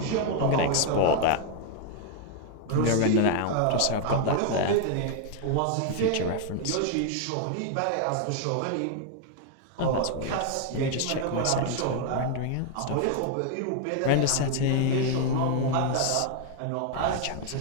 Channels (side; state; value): both; different; correlation 0.00